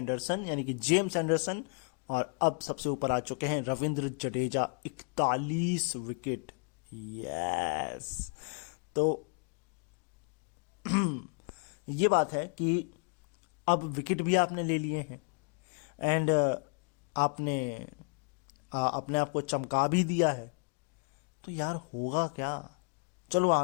यानी कि जेम्स एंडरसन, और अब सबसे ऊपर आ चुके हैं रविंद्र जडेजा 41 विकेट। यस, तो ये बात है कि अब विकेट भी आपने ले लिए हैं एंड आपने अपने आप को चमका भी दिया है, तो यार होगा क्या। चलो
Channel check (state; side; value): quieter; right; 39.8 dB